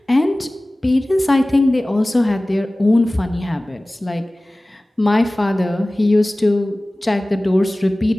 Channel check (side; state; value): both; normal; correlation 0.98